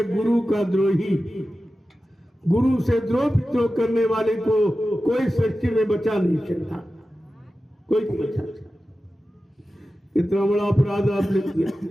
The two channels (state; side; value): normal; both; correlation 0.94